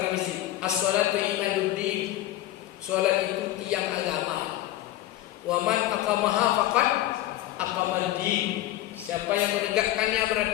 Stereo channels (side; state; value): right; quieter; 14.8 dB